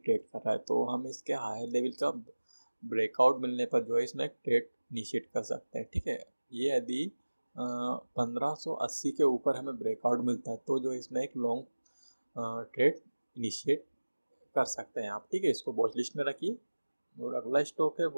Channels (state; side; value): inverted; both; correlation -1.00